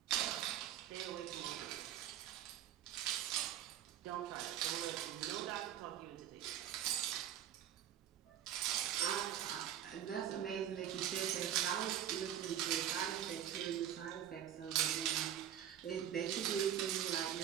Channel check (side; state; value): left; quieter; 10.5 dB